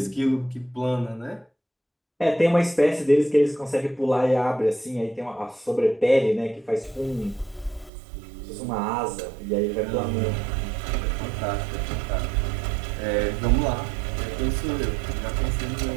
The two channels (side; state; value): left; drops out; at 7.9 s